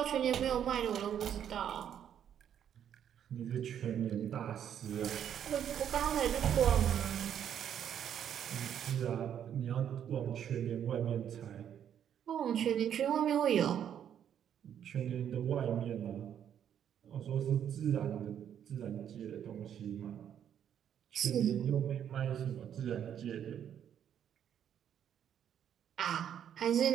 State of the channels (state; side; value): quieter; left; 9.4 dB